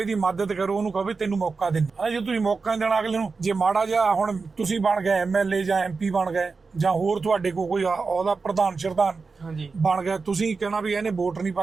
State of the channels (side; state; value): left; quieter; 4.5 dB